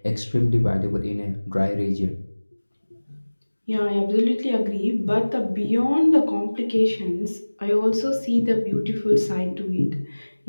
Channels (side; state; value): both; inverted; correlation -1.00